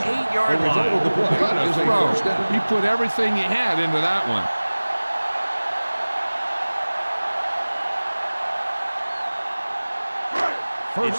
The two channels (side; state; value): both; inverted; correlation -1.00